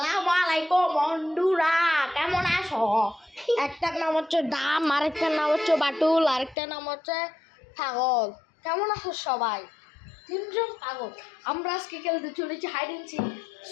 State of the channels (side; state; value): right; drops out; at 6.6 s